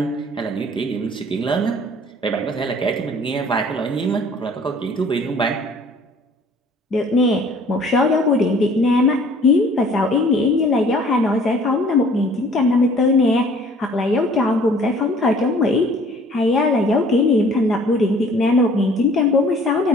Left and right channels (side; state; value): both; normal; correlation 0.53